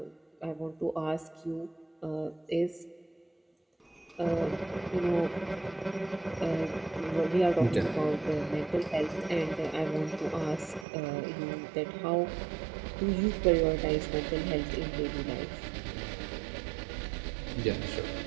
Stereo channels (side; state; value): left; drops out; at 10.9 s